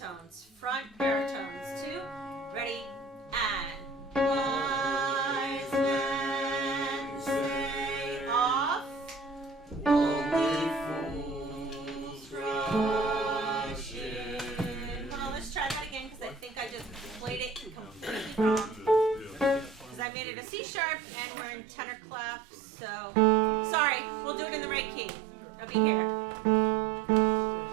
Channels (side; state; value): left; drops out; at 20.1 s